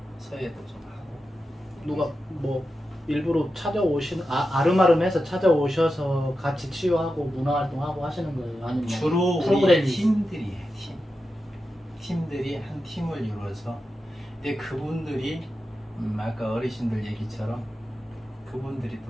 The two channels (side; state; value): both; normal; correlation 0.90